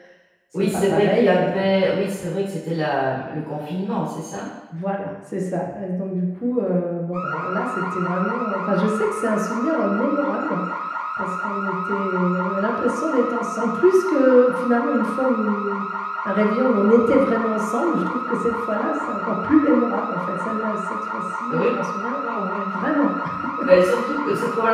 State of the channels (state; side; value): identical; both; correlation 1.00